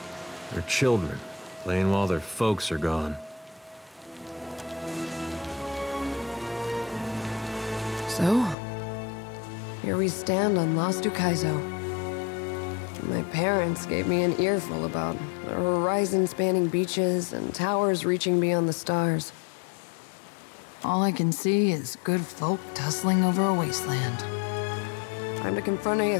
They're children, playing while their folks are gone. So, here we stand on Lost Ukaizo. My parents gave me an earful about the horizon-spanning beaches and towers reaching beyond the stars. All I can see is good folk tussling over a wasteland. Time to confront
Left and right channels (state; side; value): drops out; right; at 8.6 s